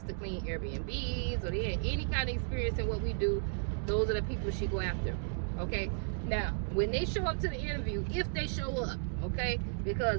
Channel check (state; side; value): silent; left; digital silence